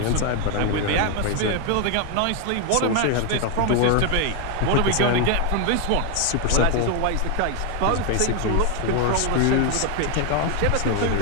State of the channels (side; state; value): both; different; correlation 0.01